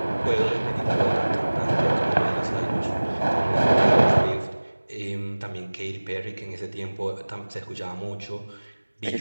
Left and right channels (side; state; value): both; inverted; correlation -1.00